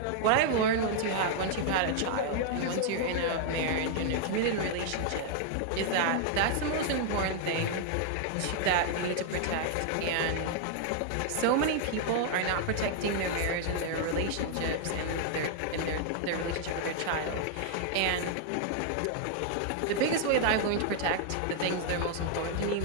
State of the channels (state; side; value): different; both; correlation 0.00